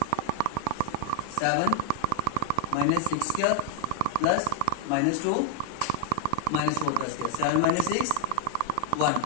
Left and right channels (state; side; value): different; both; correlation 0.00